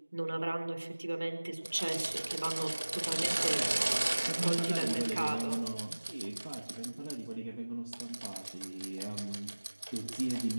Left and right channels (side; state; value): both; inverted; correlation -1.00